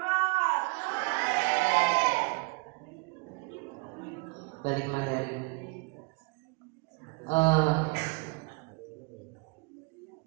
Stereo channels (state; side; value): quieter; left; 29.7 dB